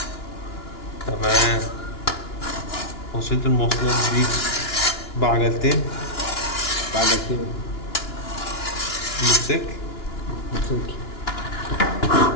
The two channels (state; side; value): late; right; 2.9 ms